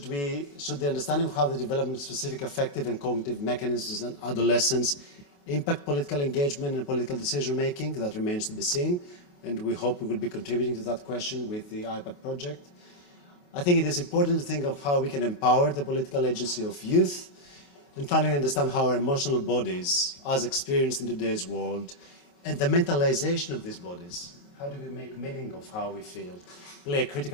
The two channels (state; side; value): late; right; 28 ms